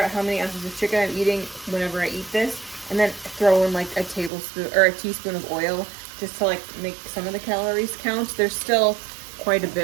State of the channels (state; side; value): drops out; left; at 4.3 s